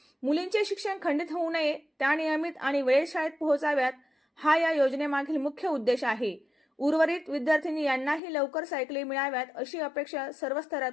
मुलींचे शिक्षण खंडित होऊ नये, त्या नियमित आणि वेळेत शाळेत पोहोचाव्यात, हा या योजनेमागील मुख्य उद्देश आहे। उर्वरित विद्यार्थिनी यांनाही लवकर सायकली मिळाव्यात अशी अपेक्षा सर्व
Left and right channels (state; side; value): drops out; right; at 8.2 s